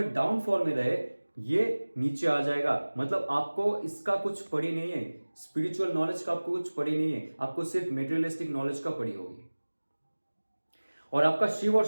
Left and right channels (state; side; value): inverted; both; correlation -1.00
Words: डाउनफॉल में रहे, ये नीचे आ जाएगा। मतलब आपको इसका कुछ पड़ी नहीं है, स्पिरिचुअल नॉलेज का आपको कुछ पड़ी नहीं है, आपको सिर्फ मेटेरियलिस्टिक नॉलेज का पड़ी होगी। और आपका शिव और